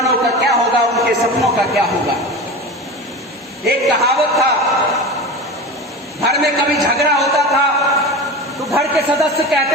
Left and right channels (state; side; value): normal; both; correlation 0.29